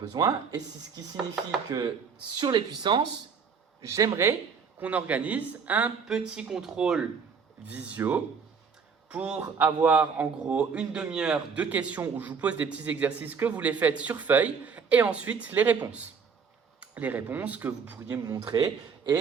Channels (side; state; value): left; quieter; 5.8 dB